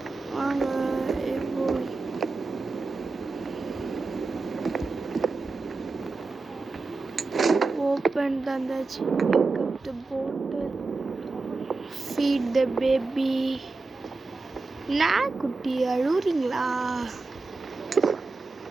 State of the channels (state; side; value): quieter; left; 3.7 dB